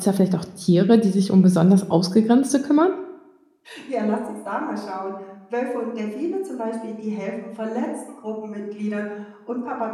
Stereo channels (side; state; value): both; identical; correlation 1.00